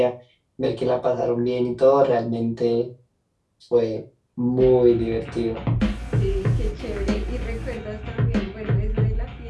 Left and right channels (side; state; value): both; identical; correlation 1.00